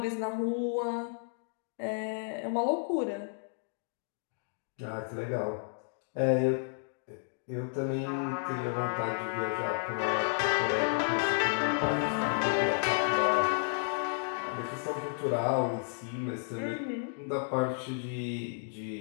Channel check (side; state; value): right; silent; digital silence